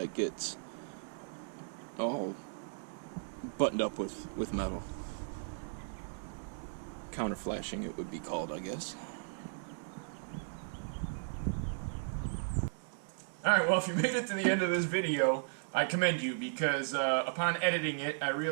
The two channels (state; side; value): silent; left; digital silence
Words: gets all buttoned up with metal. counter flashing it would be called, I guess. Alright, well, if you made it to the end of this video, I commend you, because upon editing it, I